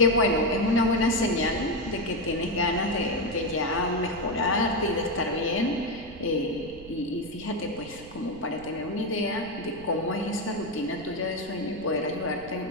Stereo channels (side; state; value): right; noise; rumble, 18 dB below the sound